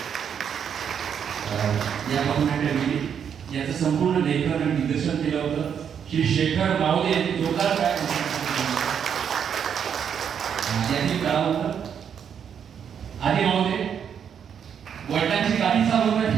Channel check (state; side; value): quieter; left; 7.9 dB